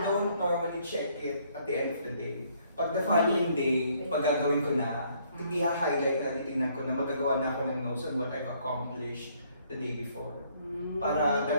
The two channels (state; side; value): inverted; both; correlation -0.66